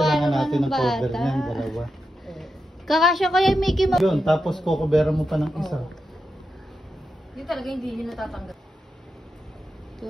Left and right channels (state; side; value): normal; both; correlation 0.88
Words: natin ng cover niyan, dalawa. Kakasya kaya Mickey Mouse. Yun, tapos kukuberan mo pa ng isa. Yun talaga hindi niya natatanggap.